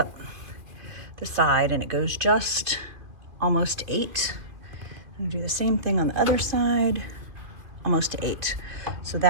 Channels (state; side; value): late; left; 2.5 ms